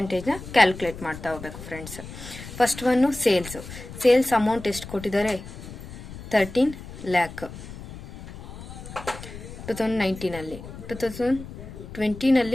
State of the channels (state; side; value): noise; left; rumble, 13 dB below the sound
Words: ಕ್ಯಾಲ್ಕುಲೇಟ್ ಮಾಡ್ತಾ ಹೋಗ್ಬೇಕು friends. First one sales amount ಎಷ್ಟು ಕೊಟ್ಟಿದ್ದಾರೆ? 13 lakh 2019ನಲ್ಲಿ.